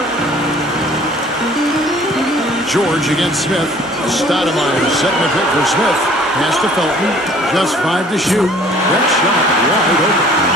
George against Smith. Stoudemire setting the pick for Smith. Pass to Felton. Just 5 to shoot. That shot wide open.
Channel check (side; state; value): both; normal; correlation 0.54